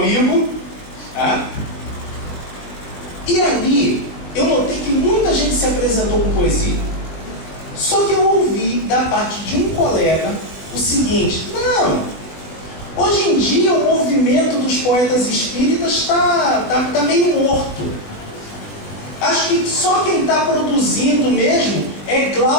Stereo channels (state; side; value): late; right; 21 ms